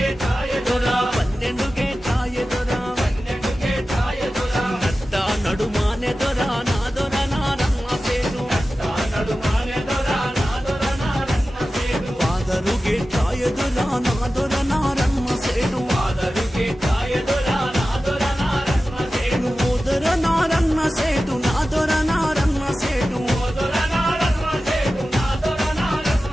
దొర 12 గేట్లాయే దొర 12 గేట్లాయే దొర నట్ట నడుమానే దొర నా దొర నారమ్మ సేటు తా నడుమానే దొర నా దొర నారమ్మ సేటు పాదరు గేట్లాయే దొర నా దొర నారమ్మ సేటు ఆదరు గేట్లాయే దొర నా దొర నారమ్మ సేటు ఓ దొర నారమ్మ సేటు నా దొర నారమ్మ సేటు ఓ దొర నారమ్మ సేటు నా దొర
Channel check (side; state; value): both; normal; correlation 0.94